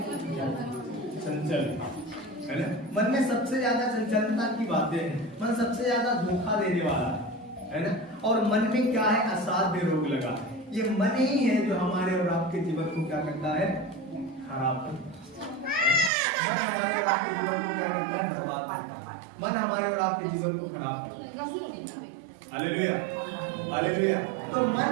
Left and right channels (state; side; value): drops out; left; at 16.1 s